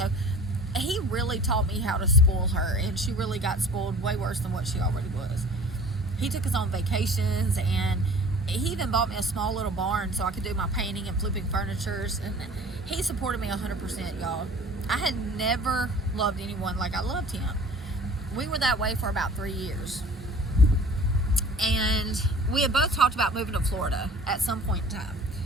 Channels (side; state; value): both; normal; correlation 0.45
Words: he really taught me how to spoil her, and she really got spoiled way worse than what she already was. He took us on vacations, and he even bought me a small little barn so I could do my painting and flipping furnitures, and he supported me 100%, y'all. I had never loved anyone like I loved him. We were that way for about 3 years. And we had both talked about moving to Florida at some point in time.